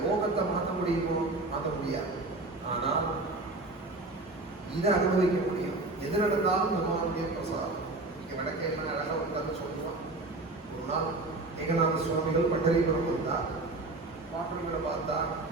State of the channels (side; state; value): left; quieter; 3.1 dB